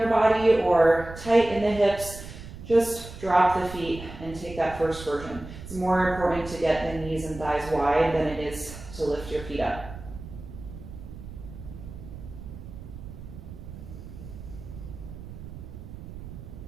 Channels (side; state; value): right; noise; rumble, 13 dB below the sound